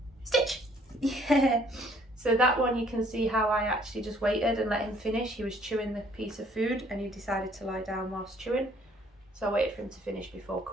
Stitch! Yeah. So that one, you can see how I actually just waited and let him finish. He was chewing the piece of food and he decided to lie down whilst chewing. So I waited for him to finish before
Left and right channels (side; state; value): both; normal; correlation 0.61